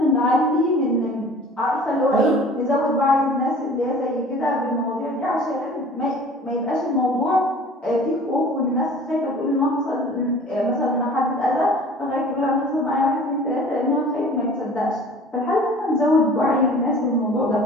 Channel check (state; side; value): normal; both; correlation 0.46